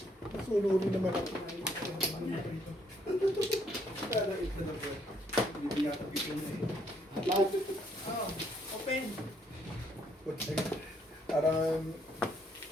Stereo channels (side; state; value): both; normal; correlation 0.70